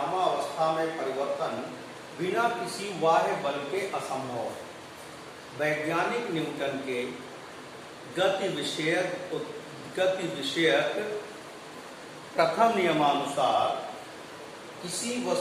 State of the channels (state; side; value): identical; both; correlation 1.00